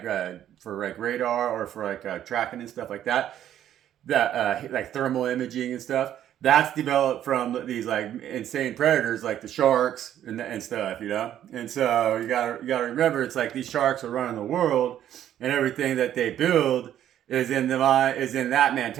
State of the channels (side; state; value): left; quieter; 11.1 dB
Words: for like radar or for like tracking and stuff like that, like thermal imaging and stuff, that's developed from these like insane predators like the sharks and stuff, you know. And so you gotta remember, it's like these sharks are running the world, and everything that they build is in that